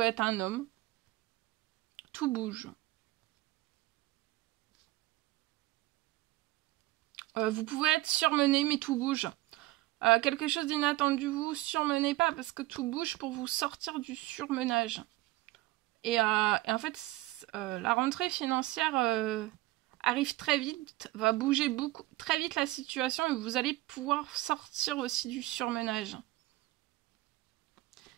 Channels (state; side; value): quieter; left; 18.7 dB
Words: être un homme, tout bouge. Vous pouvez être surmené, mais tout bouge. Quelque chose d'inattendu, vous surmenez pas, parce que tout bouge pour vous sortir du surmenage. Et en fait, la rentrée financière arrive très vite, va bouger très vite la situation et vous allez pouvoir sortir aussi du surmenage.